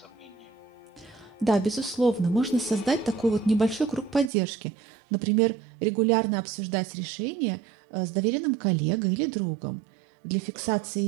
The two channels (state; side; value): drops out; left; at 4.3 s